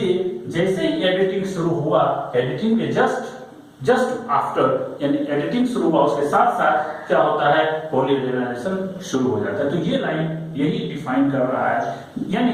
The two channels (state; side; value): identical; both; correlation 1.00